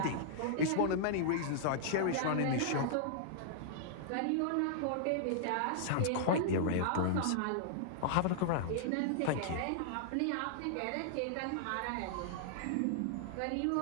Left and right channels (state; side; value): different; both; correlation -0.01